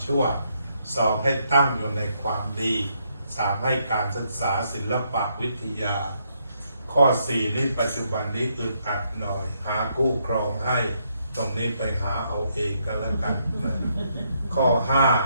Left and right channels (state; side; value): inverted; both; correlation -0.75